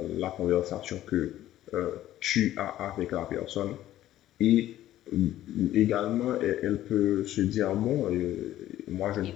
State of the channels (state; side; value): quieter; right; 13.5 dB